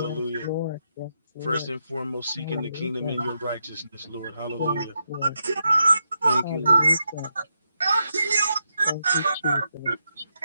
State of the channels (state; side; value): inverted; both; correlation -0.83